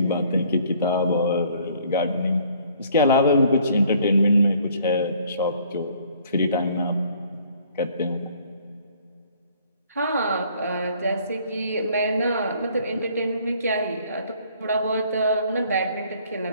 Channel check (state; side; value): inverted; both; correlation -0.59